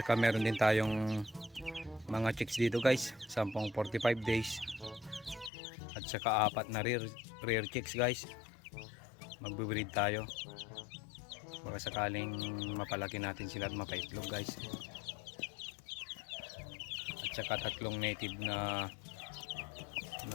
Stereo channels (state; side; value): drops out; right; at 5.5 s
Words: meron din tayong mga chicks dito guys. 45 days. At saka 4 na rear chicks guys. Magbe-breed tayo. Baka sakaling mapalaki natin sila at mapaitlog guys. saka 3 native na